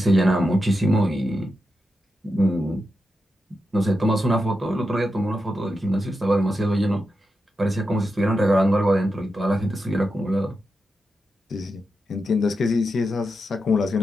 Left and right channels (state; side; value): normal; both; correlation 0.88